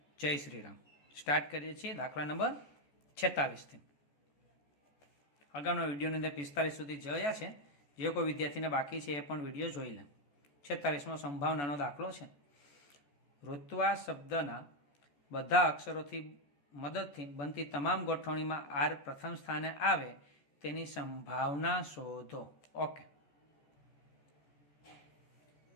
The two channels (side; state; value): right; late; 14 ms